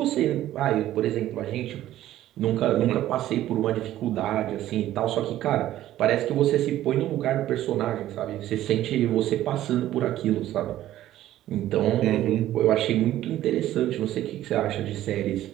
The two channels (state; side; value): quieter; left; 13.5 dB